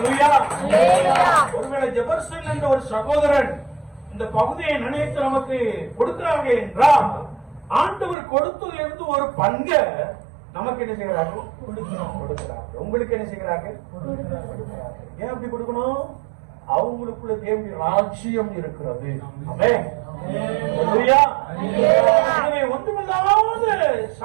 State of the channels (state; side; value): drops out; left; at 8.2 s